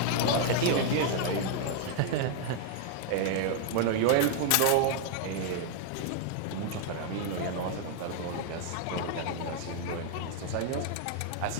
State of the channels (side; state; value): both; different; correlation 0.01